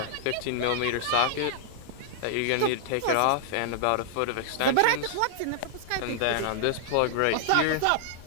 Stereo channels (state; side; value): different; both; correlation -0.01